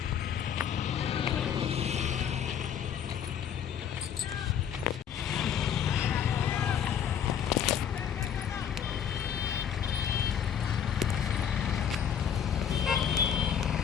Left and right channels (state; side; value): quieter; right; 8.5 dB